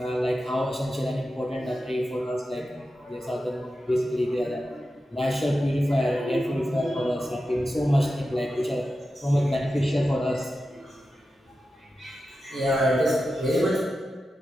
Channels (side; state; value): both; normal; correlation 0.91